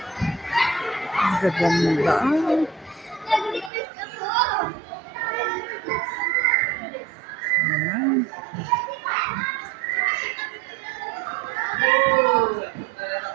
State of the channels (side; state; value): left; drops out; at 3.7 s